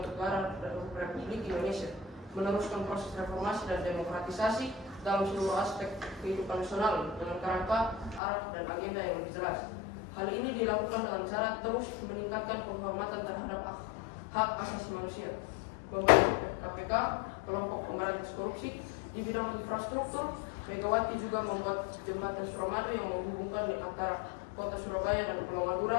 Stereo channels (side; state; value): right; drops out; at 8.2 s